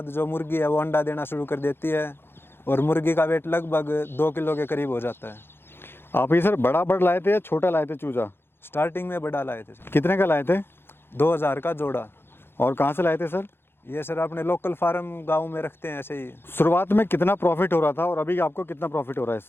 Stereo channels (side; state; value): right; late; 0.11 ms